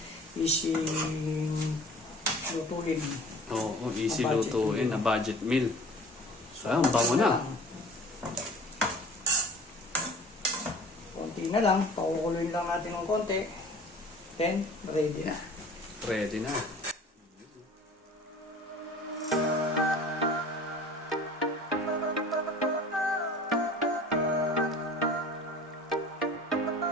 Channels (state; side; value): normal; both; correlation 0.45